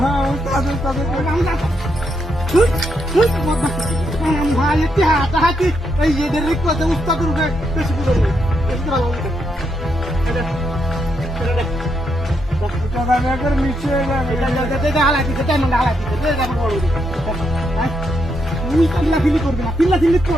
তাদের আমরা ভাই এতে হাতে এই এদের রিকোয়েস্ট উস্তাদ রূপে বেশি করে বেশি ভালো এটা নিচে এটা হালা দিতে টাইম হালা দিতে এটা বড় তুই পিল্লা ফিলি করবি না পিল্লা ফিলি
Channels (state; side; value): normal; both; correlation 0.79